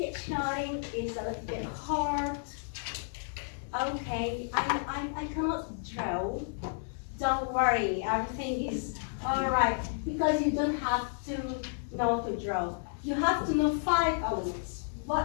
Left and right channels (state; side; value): silent; right; digital silence